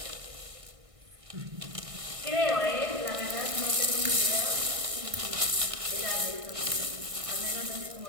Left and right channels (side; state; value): left; late; 1.6 ms